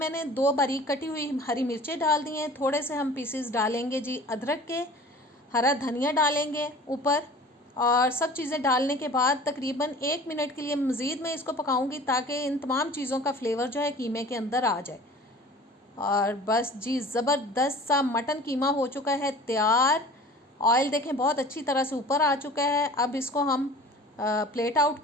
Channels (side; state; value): both; normal; correlation 0.43